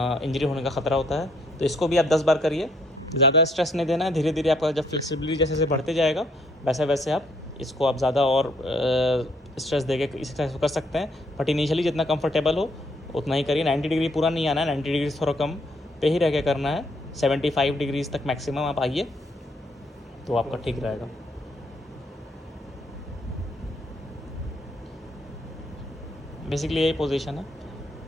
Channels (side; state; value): both; normal; correlation 0.69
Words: होने का ख़तरा होता है। तो इसको भी आप 10 बार करिए, ज़्यादा स्ट्रेस नहीं देना है। धीरे धीरे आपका जब फ्लेक्सिबिलिटी जैसे जैसे बढ़ते जाएगा वैसे वैसे आप इसको आप ज़्यादा और स्ट्रेस देके इस एक्सरसाइज को कर सकते हैं। बट इनिशियली जितना कंफर्टेबल हो उतना ही करिए। 90 डिग्री पूरा नहीं आना है, 90 डिग्री थोड़ा कम पे ही रह के करना है। 75 डिग्रीज तक मैक्सिमम आप आइए तो आपका ठीक रहेगा। बेसिकली यही पोजीशन है,